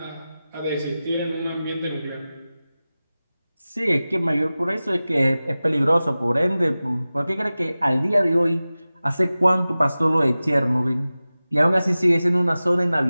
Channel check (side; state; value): both; inverted; correlation -0.96